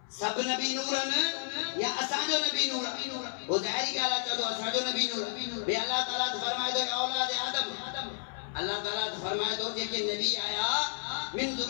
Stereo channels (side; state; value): right; silent; 57 dB below the other